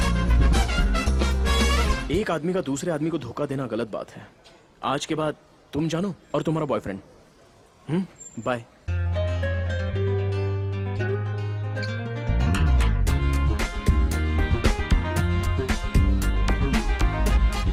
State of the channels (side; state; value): both; identical; correlation 1.00